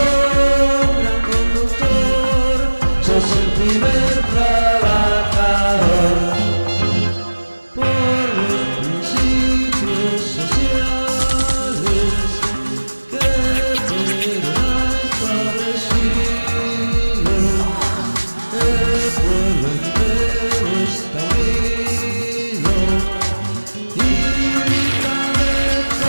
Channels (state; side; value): inverted; both; correlation -1.00